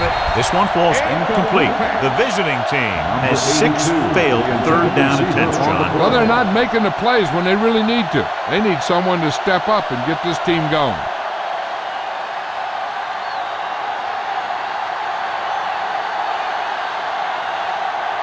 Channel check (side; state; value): both; identical; correlation 1.00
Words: it. This one falls incomplete. The visiting team has 6 failed 3rd down attempts, John. Well, they're not making the plays when they really need to. They need someone to step up and get this team going.